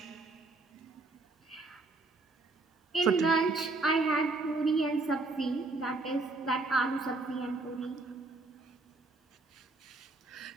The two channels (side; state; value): left; quieter; 3.3 dB